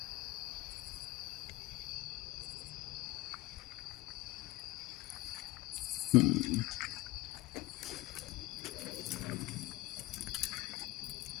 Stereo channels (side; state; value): right; quieter; 19.4 dB